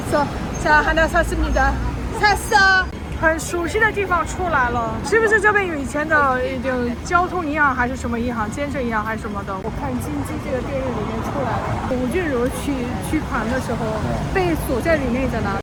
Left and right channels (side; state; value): both; identical; correlation 1.00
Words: 자, 하나 샀습니다. 샀어. 很熟悉的地方出来了，是不是这边有以前的交通银行还是什么银行，建设银行还是什么的？我看《金鸡》这个电影里面出来了，吴俊如取款的时候被锁在里面着呢。